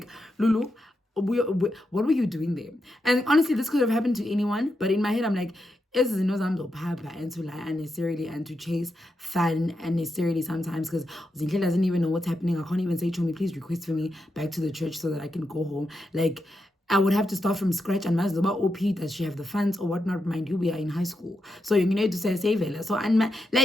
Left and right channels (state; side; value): normal; both; correlation 0.85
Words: Lulu, what were you doing there? And honestly, this could have happened to anyone, but in my head I'm like, is and to lie unnecessarily and to chase fun unnecessarily sometimes, because Zinhle doesn't even know what's happening. I can't even say, Chomi, please request for me back to the church so that I can go home. Like, I would have to start from scratch. And Mazoba OP, does she have the funds or whatnot? Mind you, we are in high school, so you need to say save it. So and